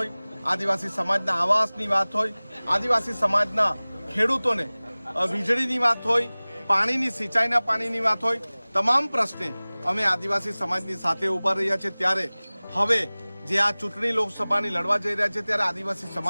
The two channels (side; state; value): both; inverted; correlation -1.00